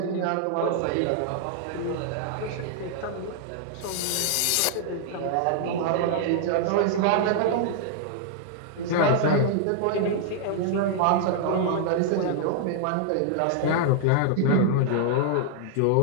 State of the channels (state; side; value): different; both; correlation -0.01